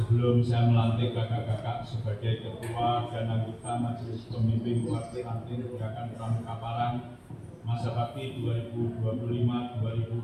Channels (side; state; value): both; identical; correlation 1.00